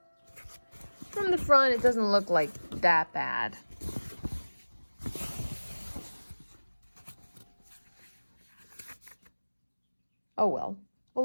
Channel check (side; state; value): both; inverted; correlation -1.00